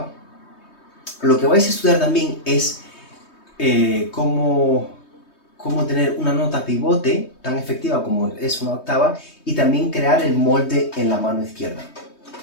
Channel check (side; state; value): right; late; 3.2 ms